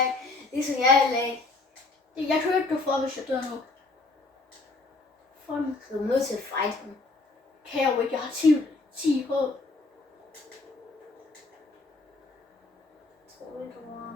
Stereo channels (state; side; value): quieter; right; 3.4 dB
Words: Ligesom jeg vil lade. Jeg kan ikke gå for, hvis jeg dør nu. For den Du er nødt til at fight ham. kan jeg jo ikke. Jeg har 10 håb. Tror du, du var